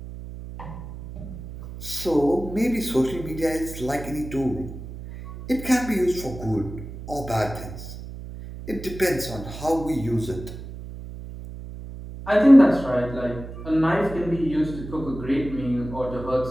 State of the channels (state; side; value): noise; right; hum, 11 dB below the sound